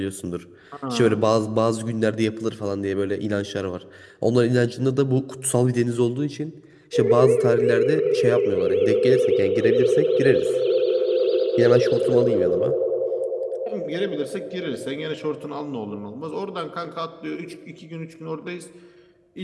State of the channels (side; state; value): both; identical; correlation 1.00